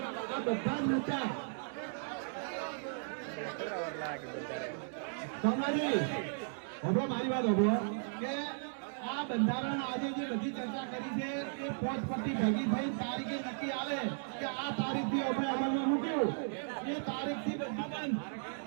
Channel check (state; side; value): silent; left; digital silence